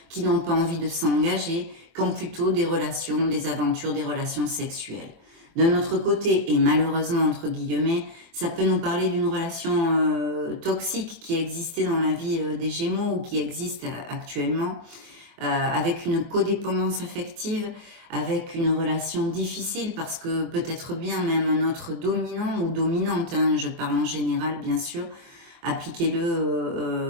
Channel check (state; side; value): late; left; 24 ms